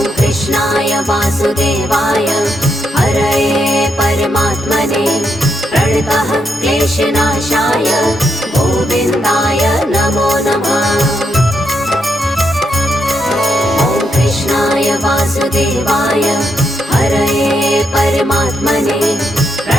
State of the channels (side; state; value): both; normal; correlation 0.80